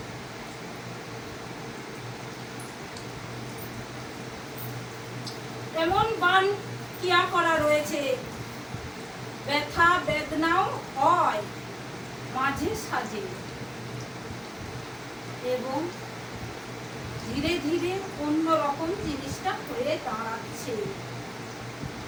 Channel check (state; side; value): identical; both; correlation 1.00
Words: এমন বান কিয়া করা রয়েছে, ব্যথা বেদনাও হয় মাঝে সাঝে এবং ধীরে ধীরে অন্যরকম জিনিসটা হয়ে দাঁড়াচ্ছে।